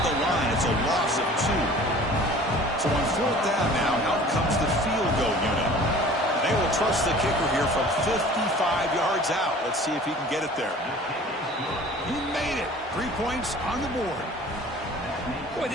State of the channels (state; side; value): normal; both; correlation 0.46